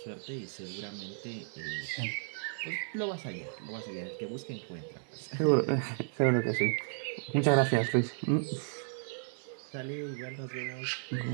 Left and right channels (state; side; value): silent; left; digital silence